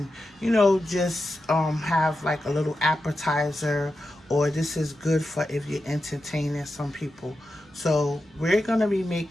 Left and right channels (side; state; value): both; normal; correlation 0.90